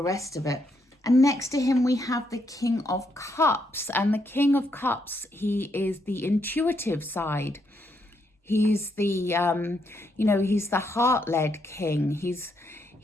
rest of it. And next to him, we have the King of Cups. And the King of Cups, he is the intuitive side. He's the, he's the heart-led king.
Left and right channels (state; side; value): normal; both; correlation 0.77